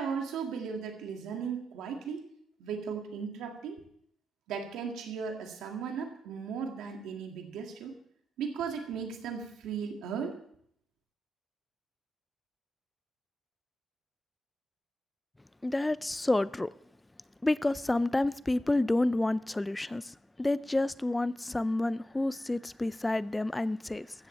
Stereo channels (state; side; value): normal; both; correlation 0.90